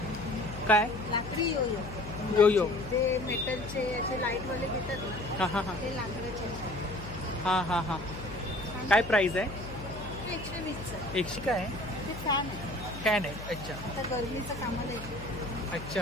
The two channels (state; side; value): noise; left; hum, 11 dB below the sound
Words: काय? लाकडी योयो. योयो. ते मेटलचे असे लाईटवाले घेतात ना. हां हां हां. ते लाकडाचे. हां हां हां. काय प्राइस आहे? 120चा. 100 काय आहे? ते फॅन आहे. फॅन आहे. अच्छा. आता गरमीचं कामाला येते.